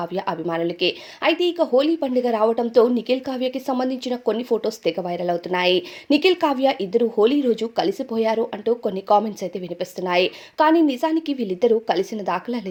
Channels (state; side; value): identical; both; correlation 1.00